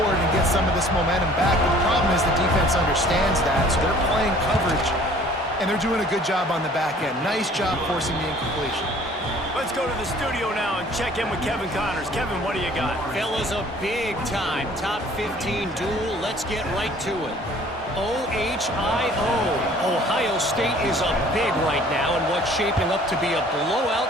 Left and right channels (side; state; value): both; normal; correlation 0.53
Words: and get some of this momentum back. But the problem is the defense understands that, so they're playing coverage, and they're doing a good job on the back end. Nice job forcing the incompletion. Let's go to the studio now and check in with Kevin Connors. Kevin, what do you got? Fellas, a big-time top 15 duel. Let's get right to it. OHIO. Ohio State is up big right now in what's shaping up to be a